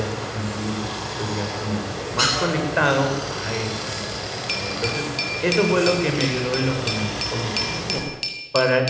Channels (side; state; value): both; identical; correlation 1.00